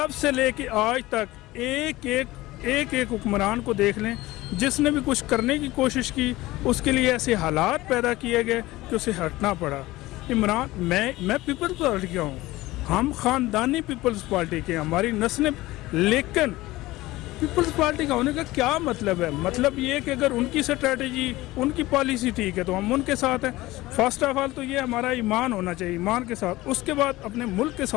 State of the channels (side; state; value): right; quieter; 18.5 dB